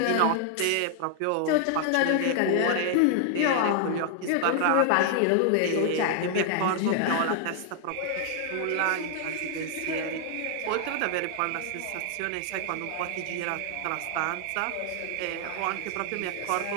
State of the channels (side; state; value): both; different; correlation 0.00